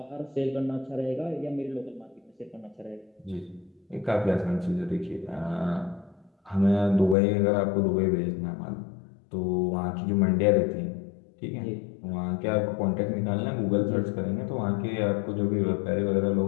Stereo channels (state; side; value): drops out; right; at 7.2 s